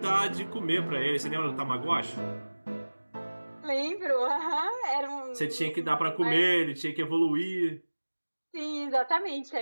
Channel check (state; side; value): inverted; both; correlation -1.00